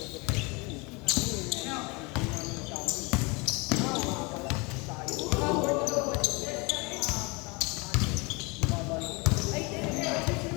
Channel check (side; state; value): right; quieter; 28.0 dB